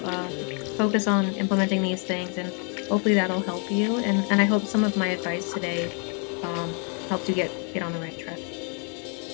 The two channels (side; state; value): right; quieter; 39.3 dB